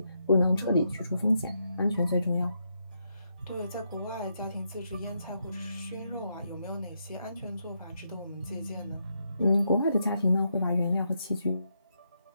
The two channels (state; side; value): inverted; both; correlation -0.80